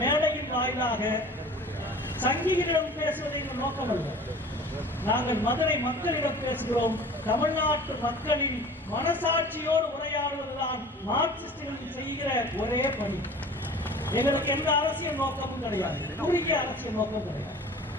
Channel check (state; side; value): normal; both; correlation 0.43